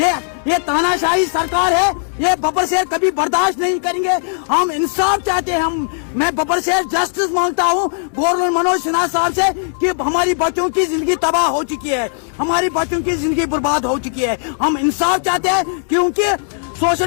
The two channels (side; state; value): right; silent; digital silence